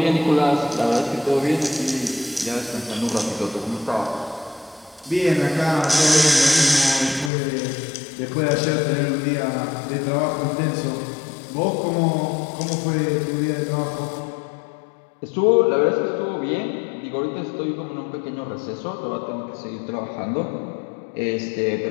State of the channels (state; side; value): drops out; right; at 7.3 s